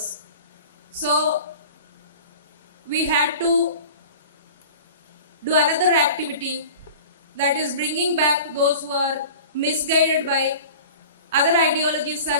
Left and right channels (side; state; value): both; inverted; correlation -0.40